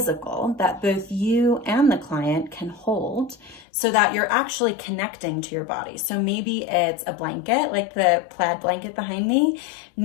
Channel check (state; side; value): drops out; right; at 3.7 s